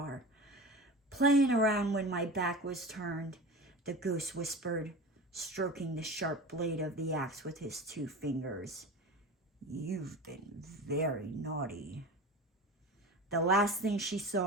Playing around when my back was turned, the ghost whispered, stroking the sharp blade of the axe with his 2 fingers. You've been very naughty. The last thing she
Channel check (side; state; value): both; normal; correlation 0.32